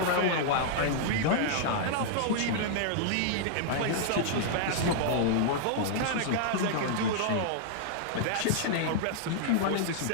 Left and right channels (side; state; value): both; different; correlation -0.01